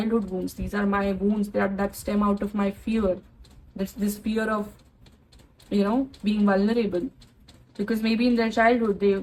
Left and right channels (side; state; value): both; identical; correlation 1.00